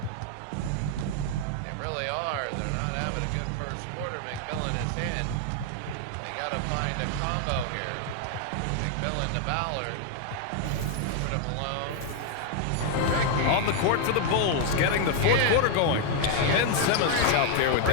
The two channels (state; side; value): different; both; correlation 0.00